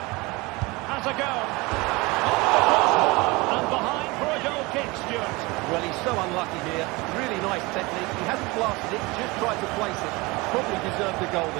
Has a go. And behind for a goal kick, Stuart. Well, he's so unlucky here. Really nice technique. He hasn't blasted it, just tried to place it. Probably deserved the goal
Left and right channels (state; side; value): quieter; left; 24.0 dB